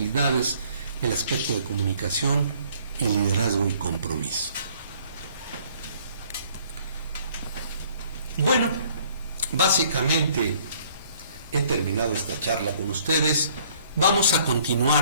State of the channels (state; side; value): inverted; both; correlation -0.59